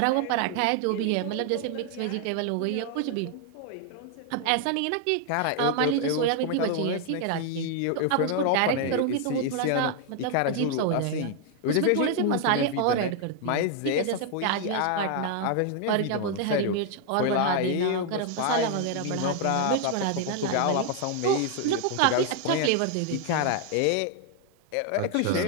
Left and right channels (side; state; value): both; different; correlation 0.00